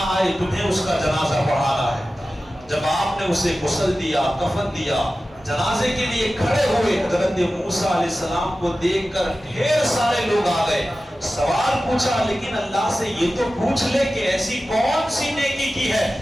آئے تمہیں اس کا جنازہ پڑھانا ہے۔ جب آپ نے اسے غسل دیا، کفن دیا، جنازے کے لیے کھڑے ہوئے، حضرت موسیٰ علیہ السلام کو دیکھ کر ڈھیر سارے لوگ آ گئے۔ سوال پوچھا، لیکن اللہ سے یہ تو پوچھ لے کہ ایسی کون سی نیکی کی ہے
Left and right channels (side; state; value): both; normal; correlation 0.95